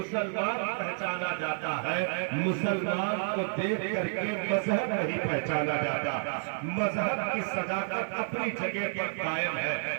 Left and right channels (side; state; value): left; silent; digital silence